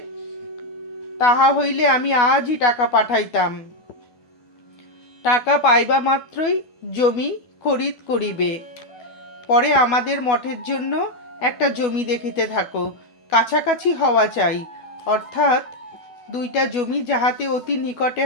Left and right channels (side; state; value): right; late; 12 ms